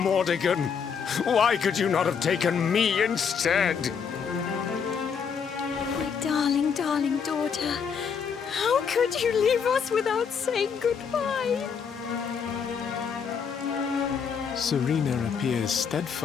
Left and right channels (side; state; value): right; quieter; 6.6 dB